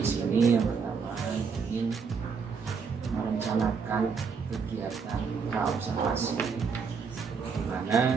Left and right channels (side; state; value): left; quieter; 5.6 dB